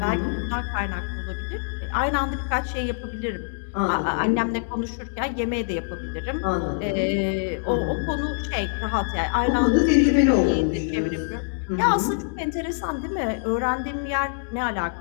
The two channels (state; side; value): silent; right; digital silence